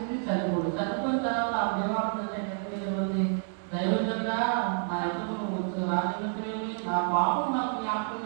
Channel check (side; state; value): left; silent; 57 dB below the other